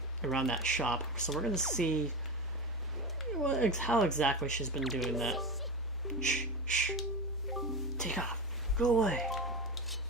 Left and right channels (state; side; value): normal; both; correlation 0.22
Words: around that shop. So we're gonna see how exactly she's been doing that. Shh, shh. Take off. Go away.